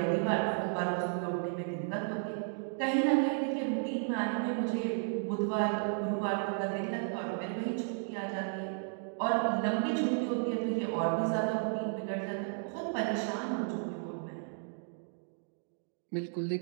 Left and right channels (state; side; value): silent; left; 55 dB below the other